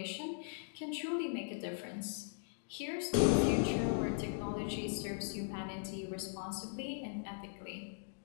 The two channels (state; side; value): silent; right; digital silence